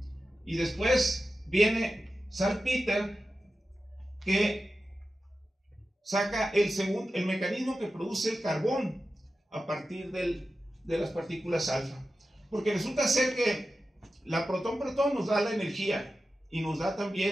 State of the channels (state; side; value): normal; both; correlation 0.93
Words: Y después viene Salpeter, que saca el mecanismo que produce el carbón a partir de las partículas alfa. Porque resulta ser que la protón-protón nos da la energía y nos da